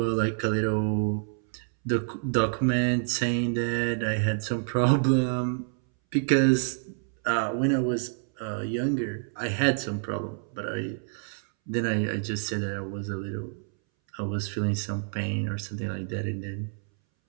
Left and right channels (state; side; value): silent; left; 59 dB below the other